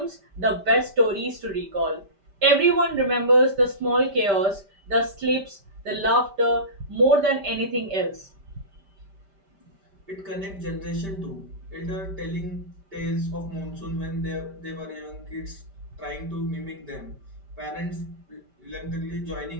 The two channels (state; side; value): late; left; 5.1 ms